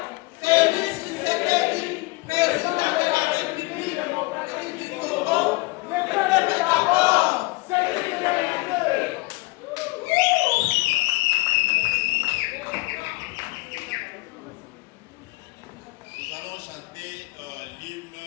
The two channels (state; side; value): quieter; right; 24.2 dB